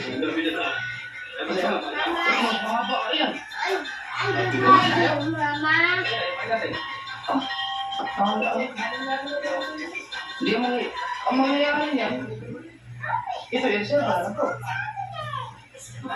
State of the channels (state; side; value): identical; both; correlation 1.00